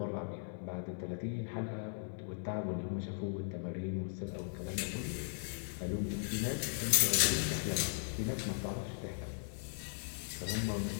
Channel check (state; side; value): silent; right; digital silence